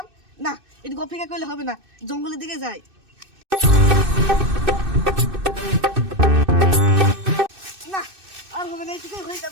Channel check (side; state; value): left; late; 2.6 ms